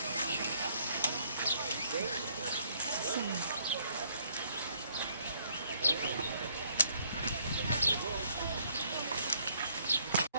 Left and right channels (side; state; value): both; inverted; correlation -0.66